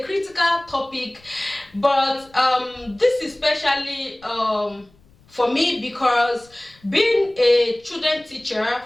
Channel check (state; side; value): noise; left; rumble, 30 dB below the sound